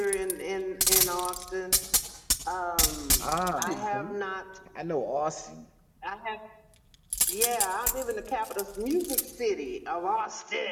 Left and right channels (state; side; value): identical; both; correlation 1.00